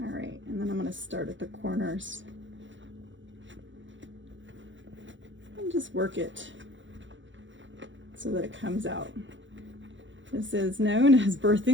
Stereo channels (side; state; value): left; late; 0.55 ms